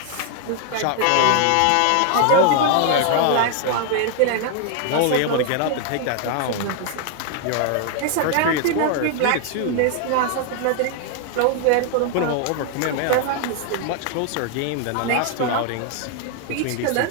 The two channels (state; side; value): different; both; correlation 0.00